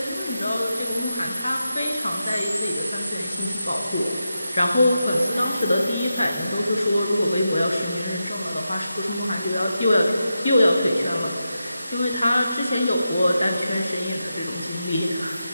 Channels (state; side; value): inverted; both; correlation -0.89